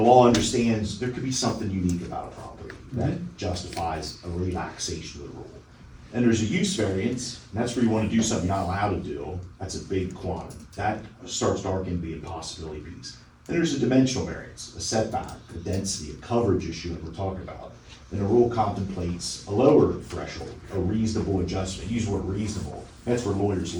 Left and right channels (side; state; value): both; identical; correlation 1.00